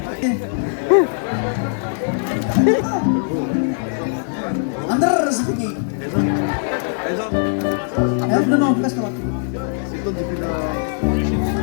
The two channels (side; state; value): right; silent; digital silence